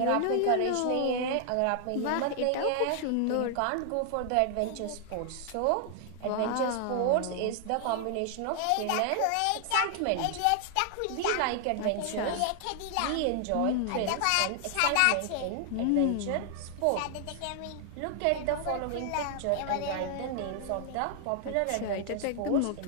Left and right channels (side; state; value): both; different; correlation 0.00